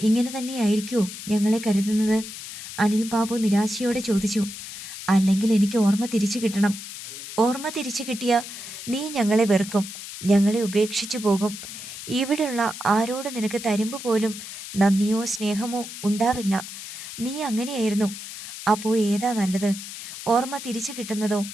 ഇങ്ങനെ തന്നെയായിരിക്കുമോ ഞങ്ങളെ കരുതുന്നത്? അനിൽ ബാബു നിരാശയോടെ ചോദിച്ചു. അല്ലെങ്കിൽ എനിക്ക് ഓർമ്മ തിരിച്ചു കിട്ടണം. ഓർമ്മ തിരിച്ചു കിട്ടിയാൽ നീ ഞങ്ങളെ വെറുക്കും, ഞങ്ങളെ ഉപേക്ഷിച്ചു പോകും. ഇവിടെയുള്ള ആരോട് നിനക്ക് തരുമ്പ് പോലും നന്ദിയോ സ്നേഹമോ ഉണ്ടാവില്ല. നീ അങ്ങനെയായിരുന്നു. അപ്പോൾ ഏതാ നല്ലത്, ഓർമ്മ തിരിച്ചു കിട്ടുന്നതോ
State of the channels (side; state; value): left; noise; hiss, 11 dB below the sound